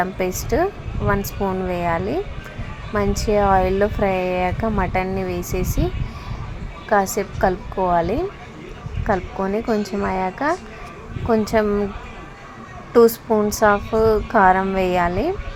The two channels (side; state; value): both; identical; correlation 1.00